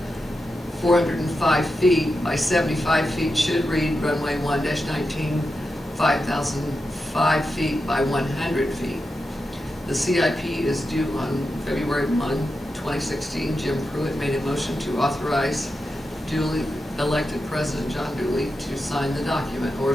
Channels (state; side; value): normal; both; correlation 0.89